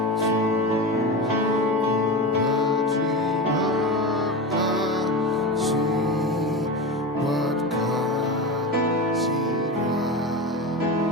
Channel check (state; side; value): normal; both; correlation 0.24